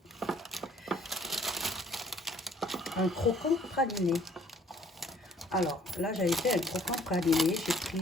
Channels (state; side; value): normal; both; correlation 0.59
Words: un croquant praliné. Alors là, j'avais fait un croquant praliné. J'ai